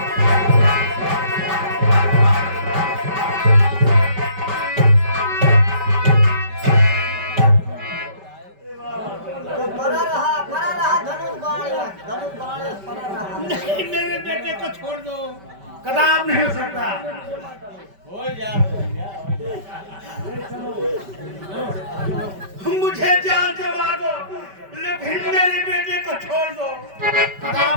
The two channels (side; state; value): left; late; 5.2 ms